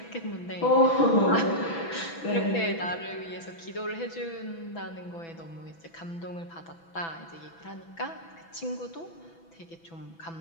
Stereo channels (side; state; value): right; late; 6.0 ms